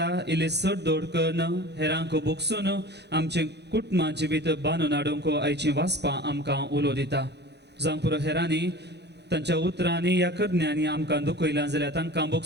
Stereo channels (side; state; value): left; late; 0.49 ms